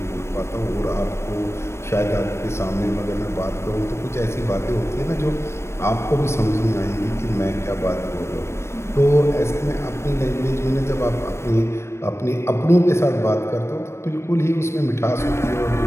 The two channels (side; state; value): right; late; 0.13 ms